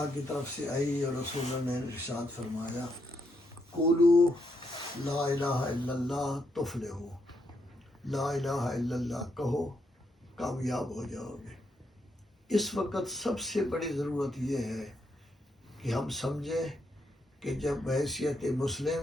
کی طرف سے آئی اور رسول اللہ نے ارشاد فرمایا، قولوا لا الہ الا اللہ تفلحوا، لا الہ الا اللہ کہو کامیاب ہو جاؤ گے۔ اس وقت سب سے بڑی ضرورت یہ ہے کہ ہم سمجھیں کہ جب بحیثیت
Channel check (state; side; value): normal; both; correlation 0.79